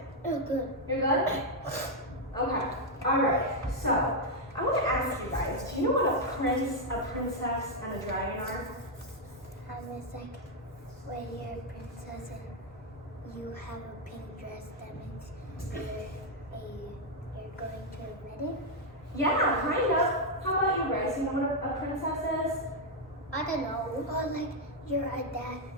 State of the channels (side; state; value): both; normal; correlation 0.00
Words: Oh, good. You're good? Okay. All right. So I want to ask you guys, do you know what a prince, a princess, and a dragon are? It's like when you're a princess and you have a pink dress, that means you're going to a wedding. Yeah, kind of. How about you, Grace? You know what a princess is? I don't know. Or like you're a dad,